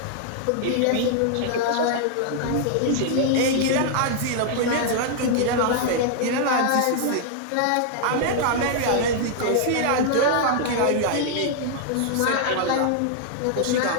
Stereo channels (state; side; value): different; both; correlation -0.01